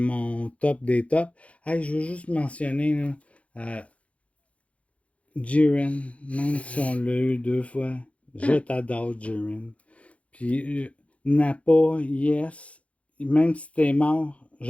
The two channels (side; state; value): right; late; 0.064 ms